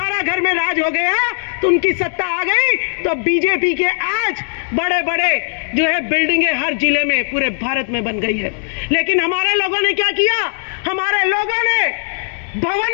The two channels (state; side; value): silent; right; digital silence